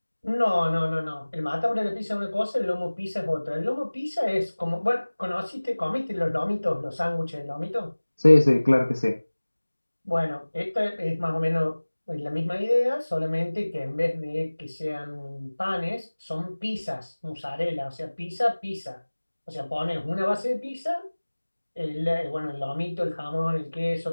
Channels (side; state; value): both; inverted; correlation -1.00